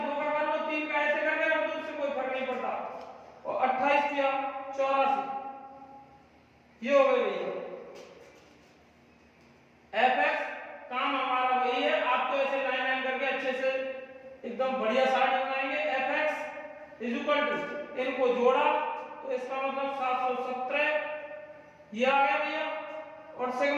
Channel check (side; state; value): both; identical; correlation 1.00